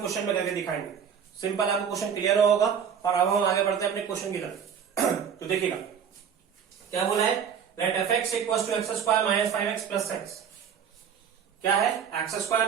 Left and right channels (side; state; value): left; quieter; 7.6 dB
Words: में करके दिखाएंगे। सिंपल, आपको क्वेश्चन क्लियर होगा। और अब हम आगे बढ़ते हैं अपने क्वेश्चन की तरफ। तो देखिएगा क्या बोला है, let f x equal to x square minus 5x plus 6। क्या है, x square